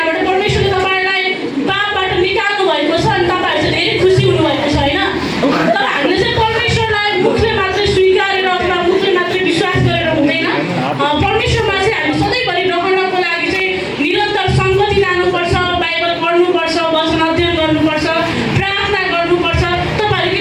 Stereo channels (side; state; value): both; identical; correlation 1.00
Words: परमेश्वरले तपाईँलाई पापबाट निकाल्नु भएको छ अनि तपाईँहरू चाहिँ धेरै खुसी हुनुभएको छ होइन? तर हामीले चाहिँ परमेश्वरलाई मुखले मात्रै स्वीकारेर अथवा मुखले मात्रै विश्वास गरेर हुँदैन। परमेश्वरमा चाहिँ हामी सधैँभरि रहनको लागि चाहिँ निरन्तर सङ्गति लानुपर्छ, बाइबल पढ्नुपर्छ, वचन अध्ययन गर्नुपर्छ, प्रार्थना गर्नुपर्छ। तपाईँहरू के